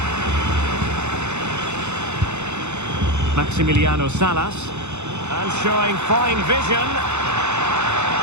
Maximiliano Salas. And showing fine vision.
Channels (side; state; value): left; late; 0.82 ms